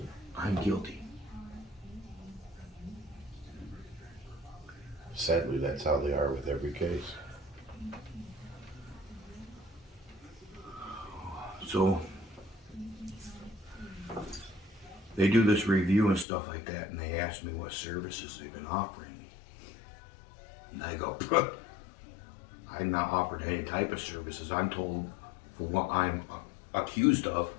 I'm guilty. Sadly, that's how they are with every case. So they do this review and stuff like that, and they ask me what services they've been offering me. And I go, I'm not offered any type of services. I'm told for what I'm accused of,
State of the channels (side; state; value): right; drops out; at 16.2 s